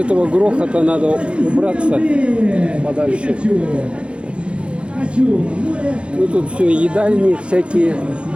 грохота надо убраться подальше. Ну тут все едальни всякие.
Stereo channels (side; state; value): left; late; 0.058 ms